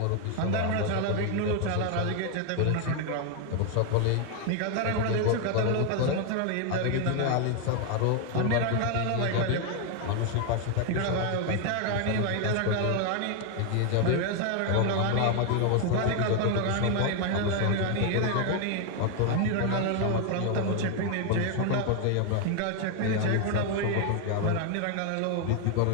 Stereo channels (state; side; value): different; both; correlation 0.01